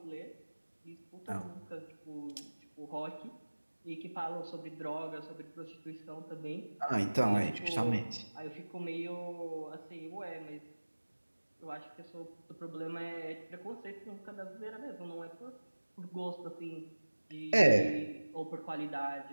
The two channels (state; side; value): inverted; both; correlation -1.00